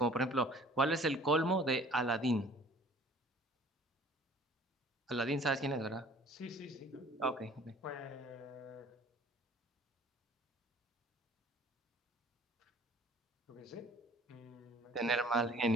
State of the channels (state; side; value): normal; both; correlation 0.51